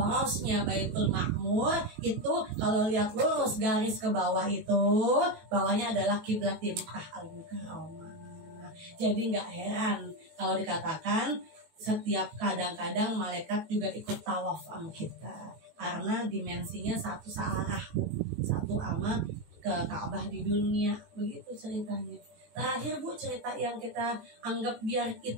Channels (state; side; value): late; left; 18 ms